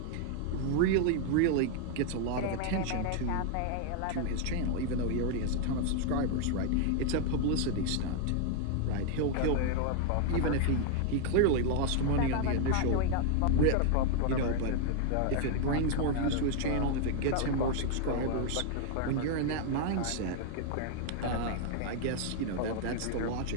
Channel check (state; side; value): different; both; correlation 0.00